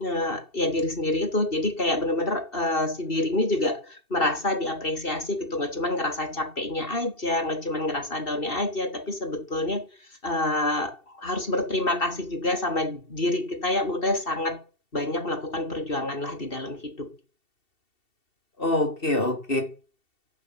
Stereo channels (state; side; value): late; right; 2.7 ms